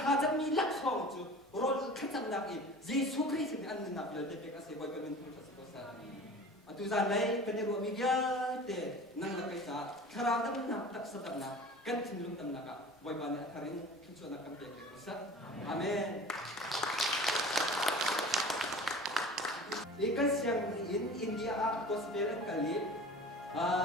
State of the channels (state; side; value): normal; both; correlation 0.40